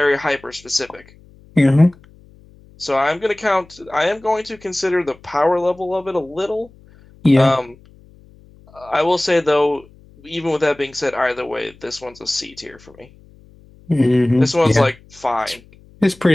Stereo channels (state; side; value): noise; left; hum, 26 dB below the sound